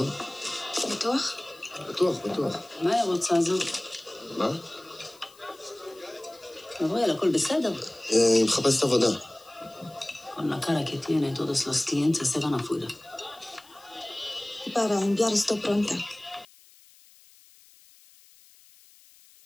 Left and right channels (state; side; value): noise; left; hiss, 26 dB below the sound